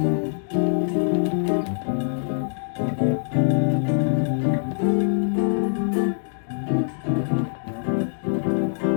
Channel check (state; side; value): silent; right; digital silence